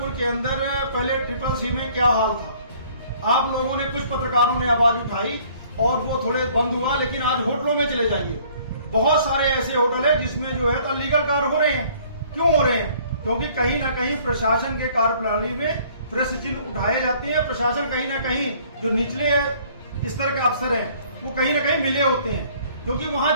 के अंदर पहले CCC में क्या हाल था। आप लोगों ने, कुछ पत्रकारों ने आवाज उठाई और वो थोड़े बंद हुआ, लेकिन आज होटलों में चले जाइए, बहुत सारे ऐसे होटल है जिसमें जो है तो अनलीगल कार्य हो रहे हैं। क्यों हो रहे हैं? क्योंकि कहीं ना कहीं प्रशासन के कार्यप्रणाली में प्रश्न चिन्ह उठाए जाते हैं। प्रशासन कहीं ना कहीं जो निचले इस तरह के अफसर हैं वो कहीं ना कहीं मिले होते हैं, क्योंकि वहां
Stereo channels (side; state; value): both; inverted; correlation -0.57